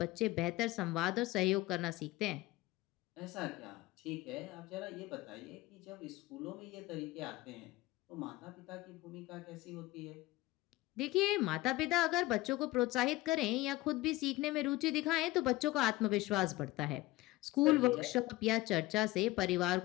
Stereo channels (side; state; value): right; quieter; 18.5 dB